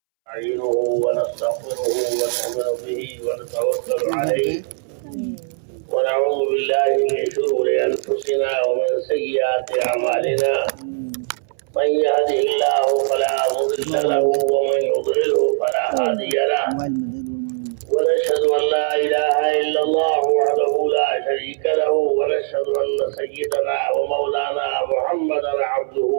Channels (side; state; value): left; silent; 66 dB below the other